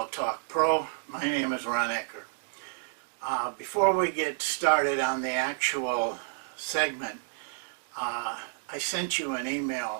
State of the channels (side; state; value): left; silent; digital silence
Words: Talk Pro. My name is Ron Ekker. Before we get started on the actual segment, I sent you an